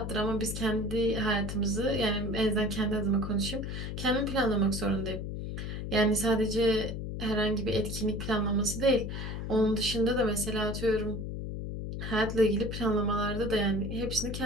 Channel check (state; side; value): noise; left; hum, 5 dB below the sound